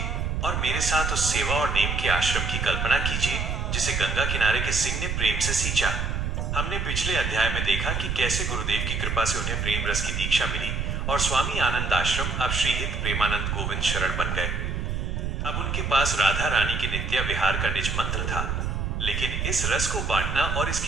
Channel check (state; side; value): noise; right; rumble, 1 dB below the sound